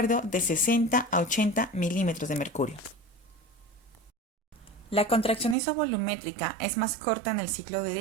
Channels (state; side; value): drops out; left; at 5.6 s